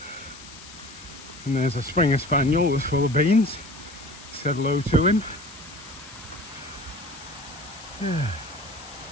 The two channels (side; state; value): left; noise; hiss, 17 dB below the sound